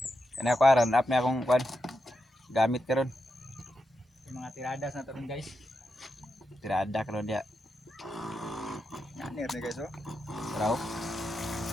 Kaya ako aran up na akong kuan. Gamit karon. Yung mga tiradas na taron guys. Tirada karon dia. Nanir na guys oh. Raw.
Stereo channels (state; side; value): normal; both; correlation 0.86